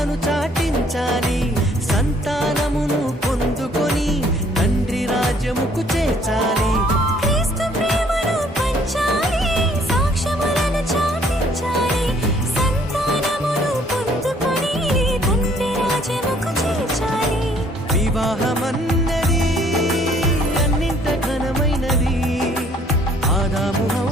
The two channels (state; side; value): normal; both; correlation 0.61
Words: చాటించాలి సంతానమును పొందుకొని తండ్రి రాజ్యముకు చేర్చాలి క్రీస్తు ప్రేమను పంచాలి సాక్ష్యములను చాటించాలి సంతానమును పొందుకొని తండ్రి రాజ్యముకు చేర్చాలి వివాహమన్నది అన్నింట ఘనమైనది ఆదాము